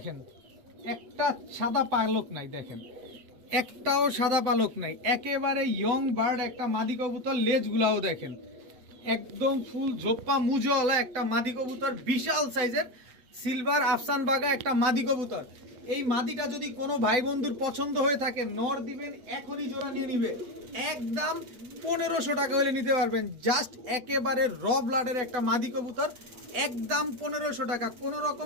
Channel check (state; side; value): late; left; 8.0 ms